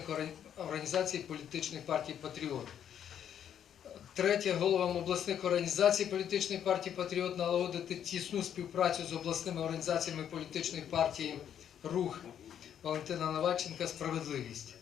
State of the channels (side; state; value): right; quieter; 9.4 dB